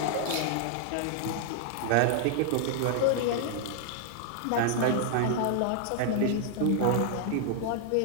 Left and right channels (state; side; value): different; both; correlation -0.01